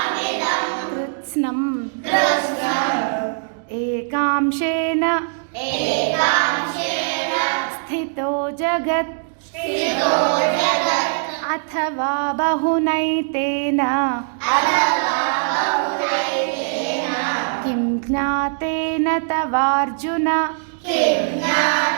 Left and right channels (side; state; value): left; silent; digital silence